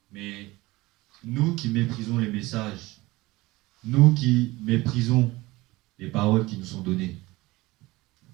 Mais nous qui méprisons les messages, nous qui méprisons les paroles qui nous sont données,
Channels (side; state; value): left; quieter; 20.4 dB